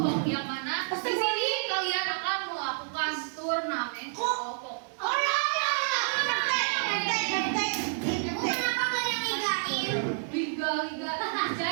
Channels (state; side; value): silent; left; 58 dB below the other